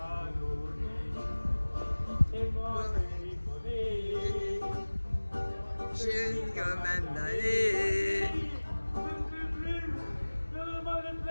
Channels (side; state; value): both; inverted; correlation -1.00